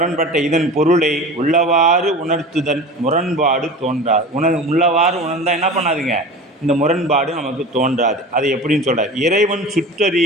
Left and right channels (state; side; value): normal; both; correlation 0.34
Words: இதன் பொருளை உள்ளவாறு உணர்த்துதல் முரண்பாடு தோன்றாது. உள்ளவாறு உணர்ந்தால் என்ன பண்ணாதுங்க, இந்த முரண்பாடு நமக்கு தோன்றாது. அது எப்படின்னு சொல்கிறார், இறைவன்